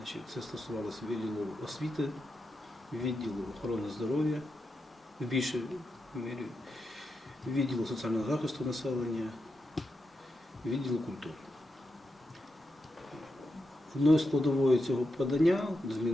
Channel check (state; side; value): normal; both; correlation 0.87